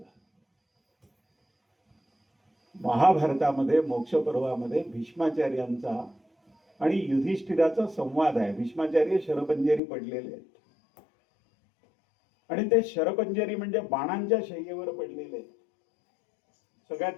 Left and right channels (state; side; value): drops out; right; at 9.8 s